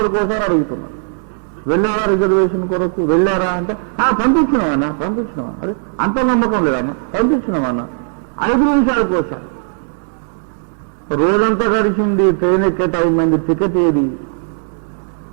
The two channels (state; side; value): silent; left; digital silence